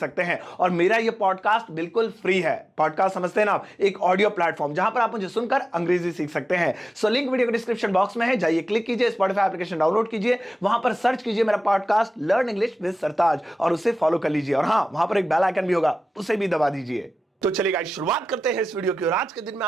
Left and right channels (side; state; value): both; normal; correlation 0.95